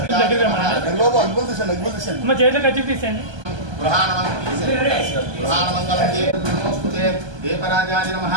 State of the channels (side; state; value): left; late; 1.2 ms